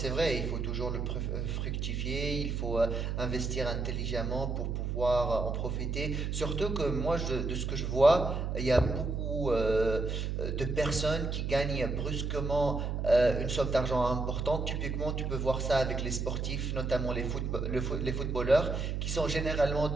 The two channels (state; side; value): noise; right; hum, 1 dB below the sound